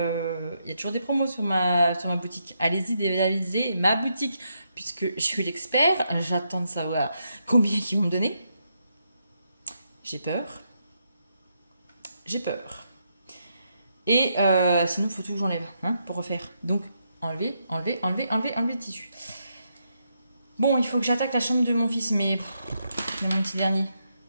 y a toujours des promos sur ma boutique. Allez-y, réalisez ma boutique puisque je suis l'expert. J'attends de savoir combien ils vont me donner. J'ai peur. Et sinon il faut tout que j'enlève pour refaire. Donc enlever le tissu. Bon, il faut que j'attaque la chambre de mon fils, mais c'est mon petit dernier.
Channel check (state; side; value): inverted; both; correlation -0.80